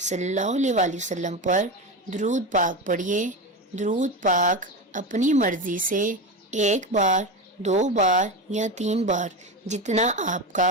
صلی اللہ علیہ وآلہ وسلم پر درود پاک پڑھیے۔ درود پاک اپنی مرضی سے 1 بار، 2 بار یا 3 بار جتنا آپ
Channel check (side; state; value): both; normal; correlation 0.20